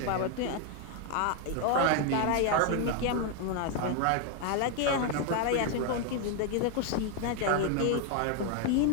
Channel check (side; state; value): both; different; correlation 0.01